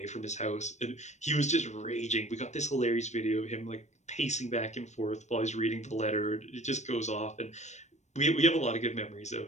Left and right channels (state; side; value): late; right; 0.34 ms